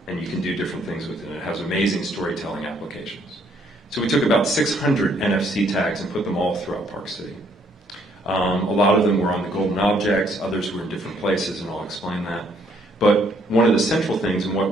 and you can do different things with it. It has amazing storytelling applications. So we took about 600 NFC tags and put them all throughout Park City. A lot of them were on the golden objects, others were in different places, and I'll explain that. But one of the central things, and what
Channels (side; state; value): both; normal; correlation 0.67